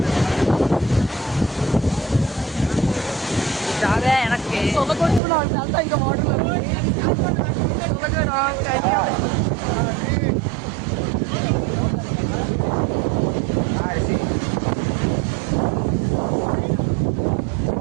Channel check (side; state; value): left; drops out; at 5.2 s